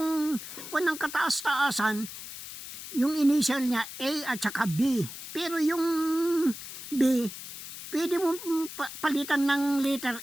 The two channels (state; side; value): noise; left; hiss, 11 dB below the sound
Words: ng kataas-taasan, yung initial niya A at saka B. Pero yung B, pwede mo palitan ng